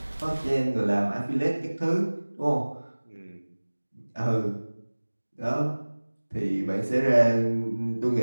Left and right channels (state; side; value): inverted; both; correlation -1.00